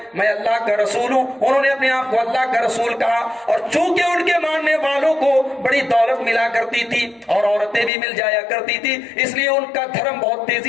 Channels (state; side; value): drops out; right; at 7.9 s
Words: میں اللہ کا رسول ہوں. انہوں نے اپنے آپ کو اللہ کا رسول کہا اور چونکہ ان کے ماننے والوں کو بڑی دولت ملا کرتی تھی اور عورتیں بھی مل جایا کرتی تھی، اس لیے ان کا دھرم بہت